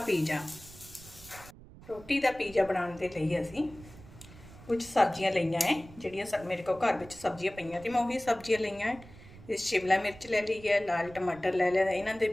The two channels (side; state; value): right; noise; rumble, 19 dB below the sound